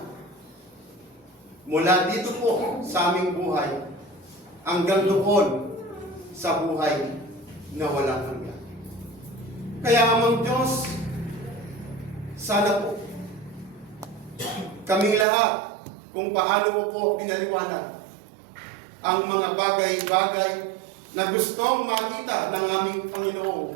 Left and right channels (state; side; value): drops out; left; at 15.2 s